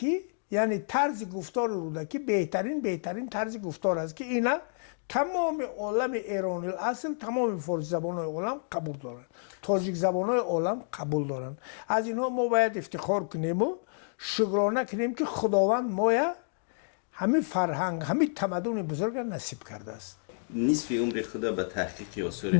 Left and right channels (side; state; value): right; silent; digital silence